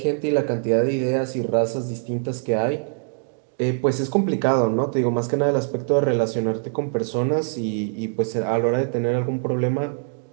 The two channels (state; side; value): silent; left; digital silence